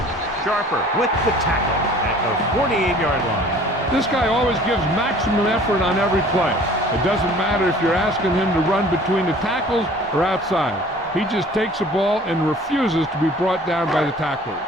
Sharper with the tackle at the 48-yard line. This guy always gives maximum effort on every play. It doesn't matter if you're asking him to run between the tackles or outside. He just takes the ball and refuses to be brought down by the tacklers.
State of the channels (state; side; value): normal; both; correlation 0.50